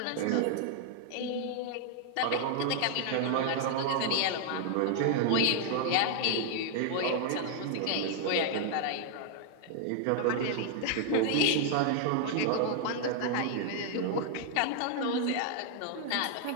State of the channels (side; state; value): both; different; correlation 0.00